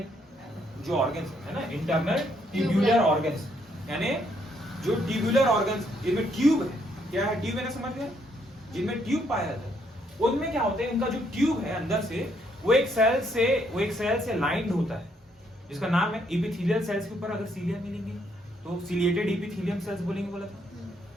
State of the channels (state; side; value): normal; both; correlation 0.72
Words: जो ऑर्गन्स है ना, इंटरनल ट्यूबुलर ऑर्गन्स, यानी जो ट्यूबुलर ऑर्गन्स जिनमें ट्यूब है, क्या है ट्यूब है ना, समझ गए, जिनमें ट्यूब पाया जाता है, उनमें क्या होता है, उनका जो ट्यूब है अंदर से वो एक सेल से लाइंड होता है जिसका नाम है एपिथेलियल सेल्स। के ऊपर अगर सीलिया मिलेंगे तो सिलिएटेड एपिथेलियम सेल्स बोलेंगे, बोला था,